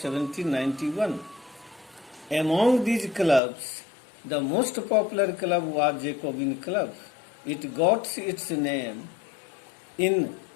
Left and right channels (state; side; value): drops out; right; at 3.4 s